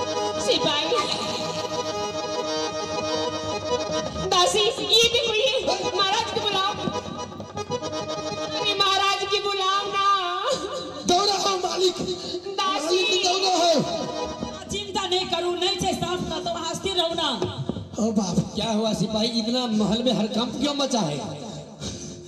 सिपाही दासी ये देखो ये महाराज को बुलाओ। अरे महाराज की बुलाओ ना। दौड़ा हो मालिक। दासी दौड़ा हो। चिंता नहीं करूं, नहीं से सांप का तो हंसती रहो ना। ओ बाप क्या हुआ सिपाही? इतना महल में हड़कंप क्यों मचा है?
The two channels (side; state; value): both; identical; correlation 1.00